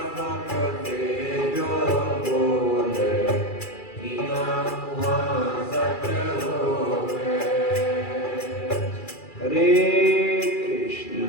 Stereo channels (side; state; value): right; late; 2.4 ms